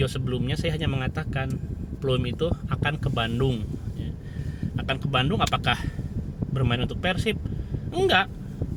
sebelumnya, saya hanya mengatakan Plim itu akan ke Bandung ya. Akan ke Bandung, apakah bermain untuk Persib? Enggak,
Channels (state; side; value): identical; both; correlation 1.00